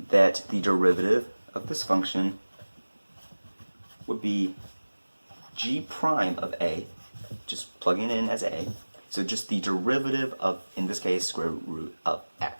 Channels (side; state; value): both; inverted; correlation -1.00